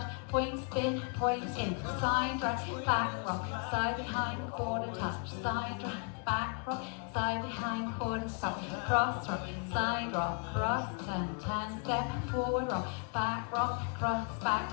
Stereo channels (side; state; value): right; quieter; 39.0 dB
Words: point, spin, point, in, side, drag, back, rock, side, behind, quarter touch, side, drag, back, rock, side, behind, quarter, stop, cross, rock, side, rock, cross, turn, step, forward, rock, cross,